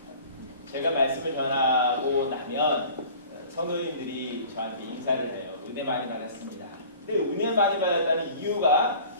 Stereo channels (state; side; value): inverted; both; correlation -0.46